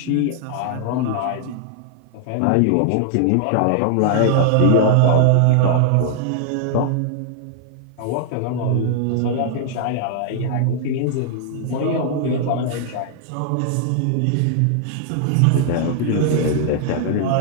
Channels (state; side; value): different; both; correlation -0.01